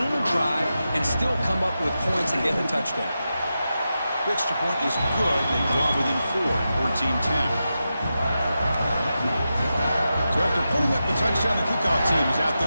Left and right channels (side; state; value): both; inverted; correlation -0.90